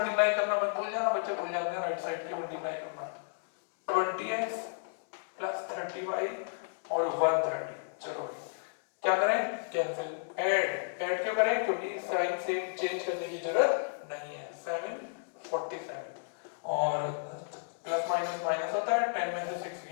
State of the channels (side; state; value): right; silent; digital silence